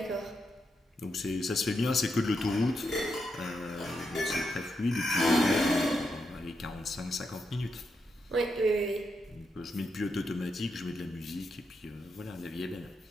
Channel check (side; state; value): both; normal; correlation 0.83